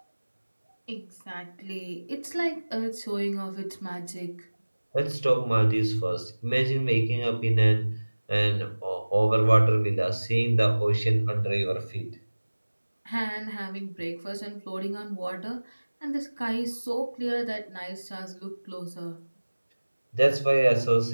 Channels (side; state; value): both; inverted; correlation -1.00